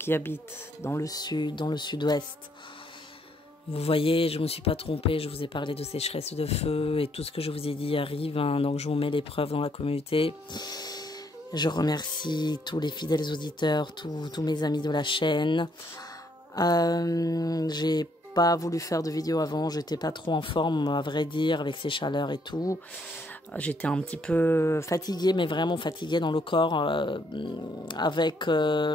habitent dans le sud, dans le sud-ouest. Vous voyez, je ne me suis pas trompée, je vous ai parlé de sécheresse de feu et tout ce que je vous ai dit arrive, donc je vous mets les preuves dans la communauté. Je remercie tous les fidèles auditeurs, tous mes amis de la chaîne. J'ai pas voulu faire de vidéo avant, j'étais pas trop en forme à vrai dire avec ces chaleurs et tout. J'étais un petit peu fatiguée, mais vraiment fatiguée dans le corps avec,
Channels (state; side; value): normal; both; correlation 0.70